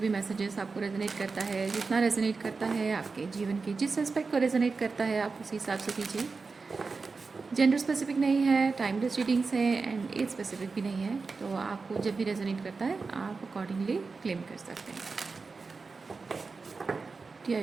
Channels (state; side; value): quieter; left; 4.4 dB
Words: मैसेजेस आपको रेजोनेट करता है, जितना रेजोनेट करता है आपके जीवन के जिस एस्पेक्ट को रेजोनेट करता है, आप उसी हिसाब से कीजिए। जेंडर स्पेसिफिक नहीं है, टाइमलेस रीडिंग्स है एंड एज स्पेसिफिक भी नहीं है, तो आपको जब भी रेजोनेट करता है आप अकॉर्डिंगली क्लेम कर सकते हैं।